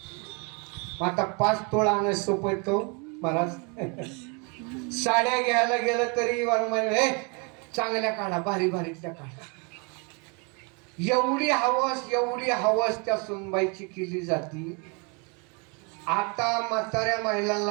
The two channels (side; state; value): left; quieter; 33.4 dB